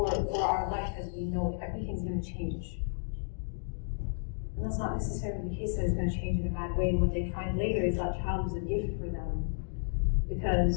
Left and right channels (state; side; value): silent; right; digital silence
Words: our life as we know it. Everything's going to change. And that's not necessarily the case that it's going to change in a bad way. And what they find later is that child was a gift for them,